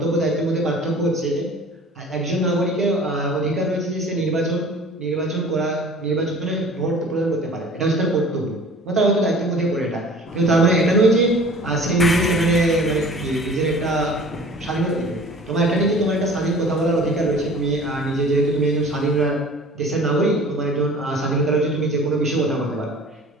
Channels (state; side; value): normal; both; correlation 0.46